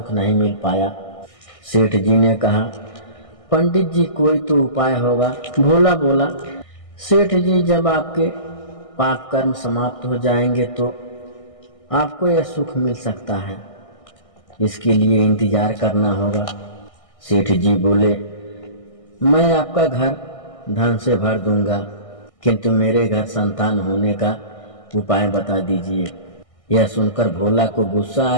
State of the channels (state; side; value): late; right; 1.6 ms